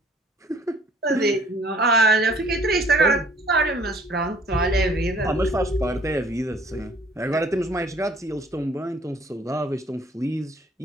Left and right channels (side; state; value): both; normal; correlation 0.56